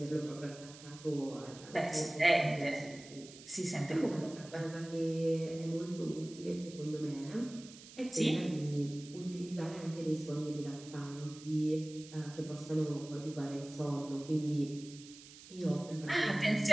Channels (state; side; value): noise; right; hiss, 17 dB below the sound